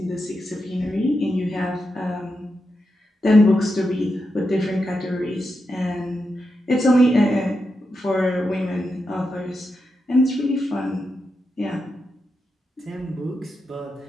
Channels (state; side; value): normal; both; correlation 0.87